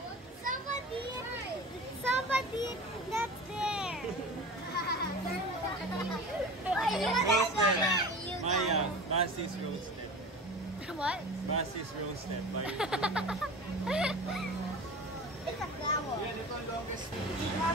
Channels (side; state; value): both; normal; correlation 0.35